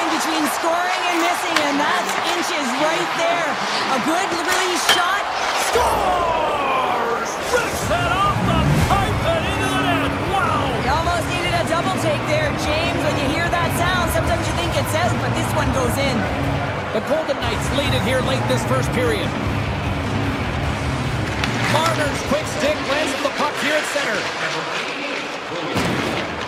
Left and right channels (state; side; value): identical; both; correlation 1.00